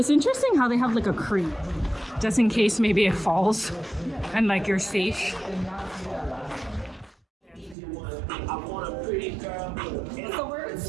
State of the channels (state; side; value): drops out; left; at 7.8 s